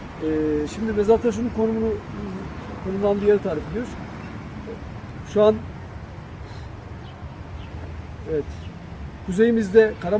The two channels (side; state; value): both; identical; correlation 1.00